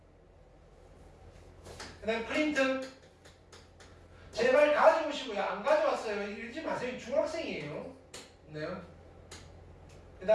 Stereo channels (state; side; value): identical; both; correlation 1.00